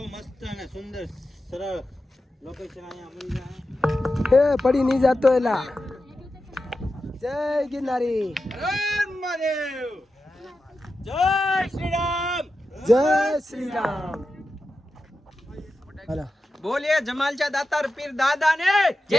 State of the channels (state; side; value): normal; both; correlation 0.91